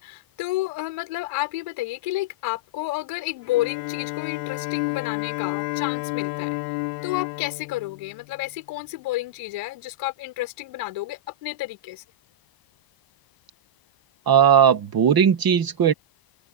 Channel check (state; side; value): late; left; 1.0 ms